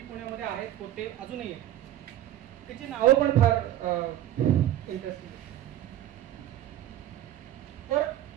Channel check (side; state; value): left; quieter; 12.7 dB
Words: आहेत, होते, अजूनही आहेत. त्याची नावं पण फार इंटरेस्टिंग. तर